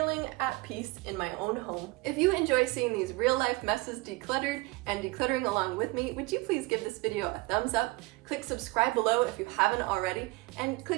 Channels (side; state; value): left; quieter; 23.5 dB